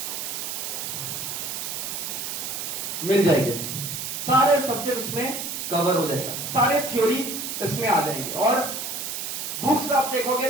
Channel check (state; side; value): noise; right; hiss, 4 dB below the sound